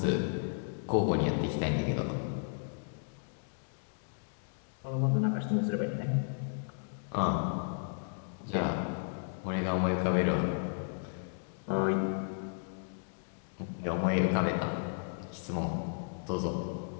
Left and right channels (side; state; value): right; silent; digital silence